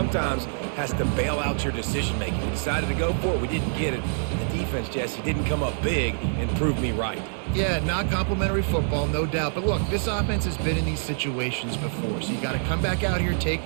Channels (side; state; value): left; silent; digital silence